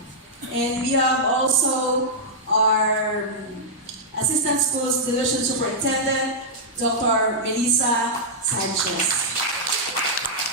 And we have also our Assistant Schools Division Superintendent, Dr. Melissa Sanchez.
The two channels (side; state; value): both; normal; correlation -0.09